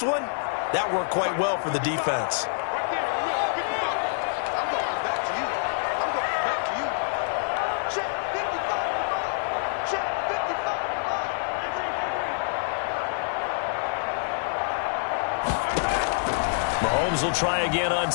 one, that worked quite well for the defense. Mahomes will try again on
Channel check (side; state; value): right; silent; digital silence